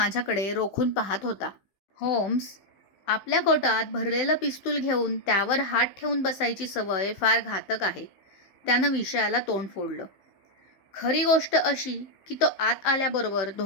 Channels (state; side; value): late; right; 15 ms